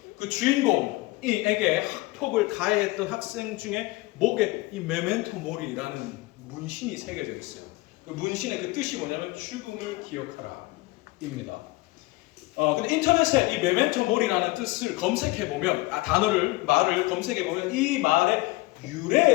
그 주인공에게 학폭을 가해했던 학생 중에 목에 이 메멘토 모리라는 문신이 새겨져 있어요. 그 문신의 그 뜻이 뭐냐면 죽음을 기억하라입니다. 근데 인터넷에 이 메멘토 모리라는 뜻을 검색해 보면 말을 검색해 보면 이 말의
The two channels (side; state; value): right; quieter; 21.2 dB